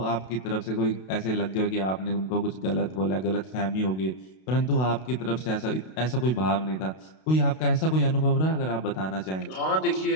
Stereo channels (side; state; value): right; late; 32 ms